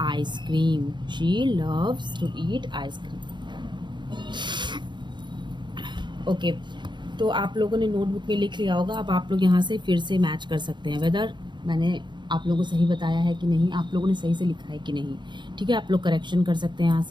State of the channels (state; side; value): late; left; 0.22 ms